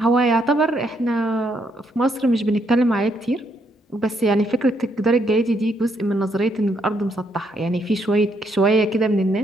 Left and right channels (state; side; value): normal; both; correlation 0.74